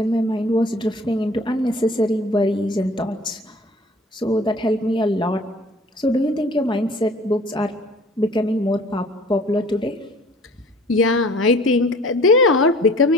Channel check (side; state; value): both; normal; correlation 0.49